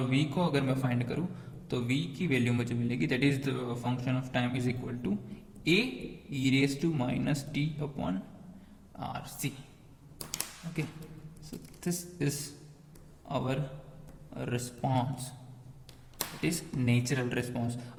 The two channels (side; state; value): both; identical; correlation 1.00